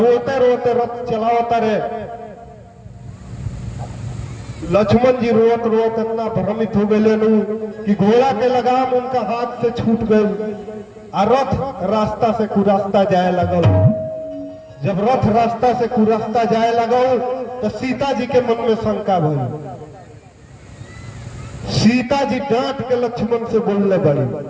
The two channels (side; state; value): both; identical; correlation 1.00